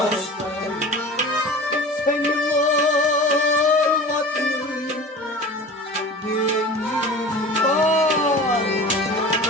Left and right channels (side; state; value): both; normal; correlation 0.37